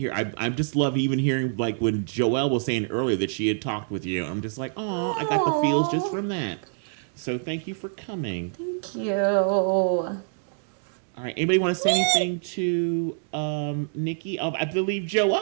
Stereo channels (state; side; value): silent; left; digital silence